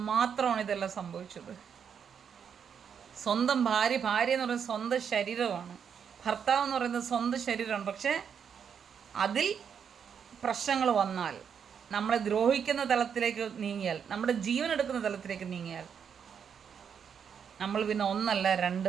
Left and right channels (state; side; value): quieter; left; 7.4 dB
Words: മാത്രമാണ് ഇതെല്ലാം സംഭവിച്ചത്. സ്വന്തം ഭാര്യ എന്ന് പറയുന്നത് സ്വന്തം ശരീരമാണ്, ഭർത്താവ് എന്ന് പറയുന്നത് സ്വന്തം ശരീരമാണ്. പക്ഷേ അതിൽ പ്രശ്നങ്ങൾ വന്നാൽ, നമ്മളെ ദ്രോഹിക്കുന്ന തലത്തിലേക്ക് നീങ്ങിയാൽ, നമ്മുടെ ജീവൻ എടുക്കുന്ന തലത്തിലേക്ക് നീങ്ങിയാൽ, നമ്മൾ പിന്നെ ഒന്നല്ല രണ്ട്